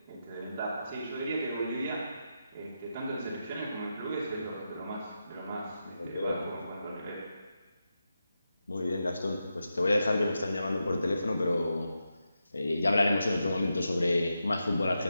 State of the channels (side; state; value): both; inverted; correlation -0.88